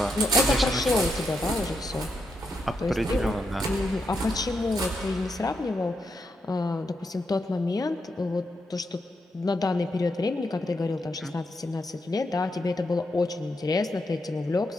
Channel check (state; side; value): normal; both; correlation 0.82